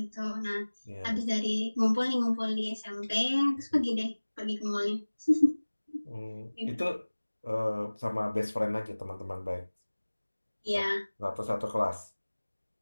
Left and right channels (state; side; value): inverted; both; correlation -1.00